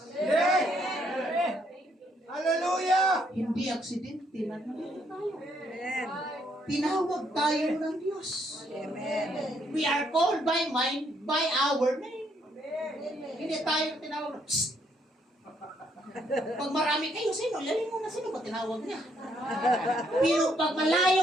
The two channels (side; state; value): both; normal; correlation 0.71